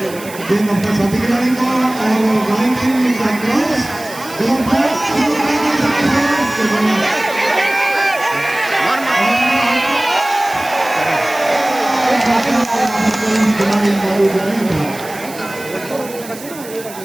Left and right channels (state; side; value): noise; right; hiss, 16 dB below the sound